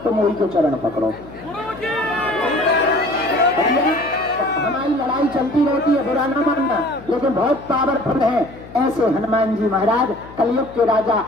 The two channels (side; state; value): left; noise; hum, 18 dB below the sound